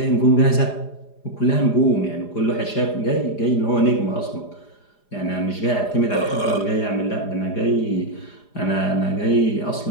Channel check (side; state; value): right; late; 4.9 ms